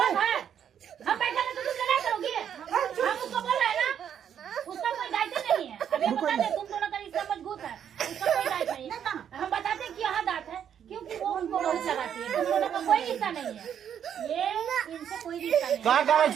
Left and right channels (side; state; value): left; quieter; 8.9 dB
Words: है? हम बैठे हैं तो तुम लड़ाई करोगी? हम उसको बोल रहे हैं ना, उसका कोई दायित्व नहीं है। अभी बता दे तुम दोनों का रिश्ता मजबूत है, उसका कोई दायित्व नहीं है। हम बताते हैं कि यहाँ दांत है क्योंकि वो उनको बहुत लगाती है, तुम दोनों का कोई रिश्ता नहीं है, ये इनसे कोई रिश्ता नहीं है। क्या करे